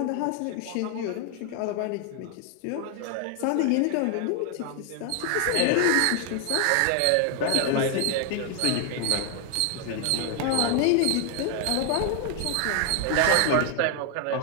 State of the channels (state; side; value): different; both; correlation 0.00